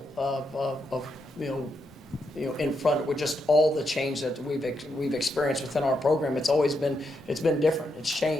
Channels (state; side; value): normal; both; correlation 0.82